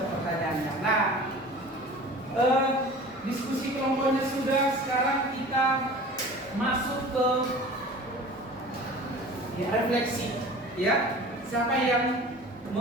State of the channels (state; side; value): normal; both; correlation 0.41